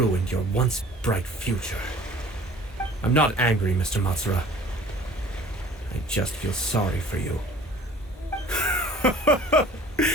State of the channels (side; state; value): both; normal; correlation 0.48